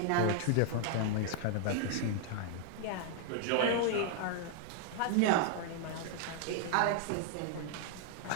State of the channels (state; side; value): different; both; correlation 0.00